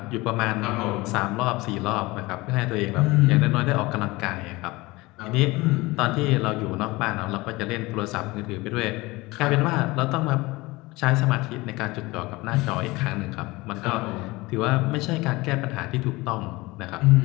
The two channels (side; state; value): right; quieter; 21.7 dB